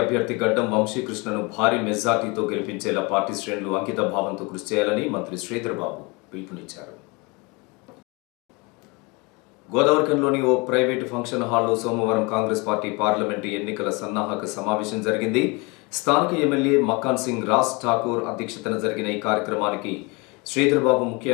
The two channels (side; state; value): right; quieter; 27.6 dB